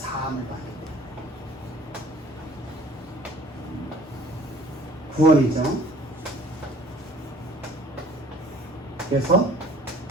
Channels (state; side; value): normal; both; correlation 0.51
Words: 받는 구원이죠. 그래서